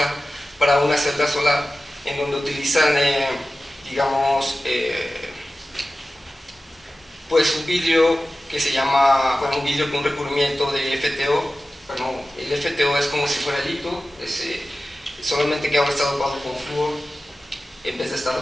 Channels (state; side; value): normal; both; correlation 0.95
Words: para una celda solar, en donde utilizan, digamos, pues un vidrio que se llama, bueno, un vidrio con un recubrimiento de FTO. Bueno, el FTO es como si fuera el litio, solamente que ahora está dopado con flúor en vez de estar